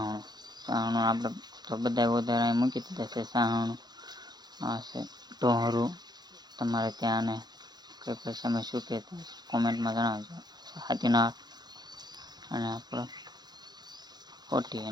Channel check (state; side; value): late; left; 0.20 ms